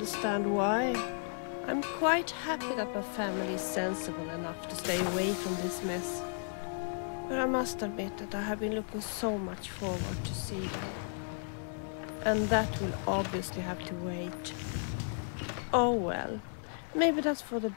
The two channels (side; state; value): right; silent; digital silence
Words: why. I'm quite happy that my family is sensible enough to stay away from this mess. But I must admit that I have been looking so much forward to see them. And that will obviously have to wait. Oh well, maybe that's for the